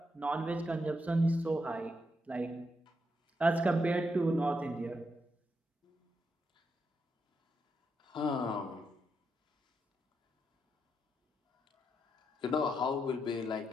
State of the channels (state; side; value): normal; both; correlation 0.82